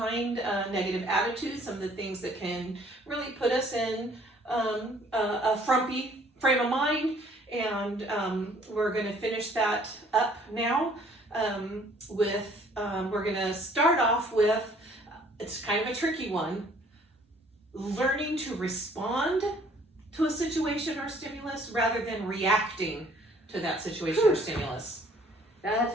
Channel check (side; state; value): both; normal; correlation 0.59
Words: negative attitudes, some of the things that can really put us in a frumpy frame of mind, and we're going to finish that up now we're going to start off with, it's kind of a tricky one, learning to respond to a situation or stimulus rather than reacting to that situation or stimulus. That's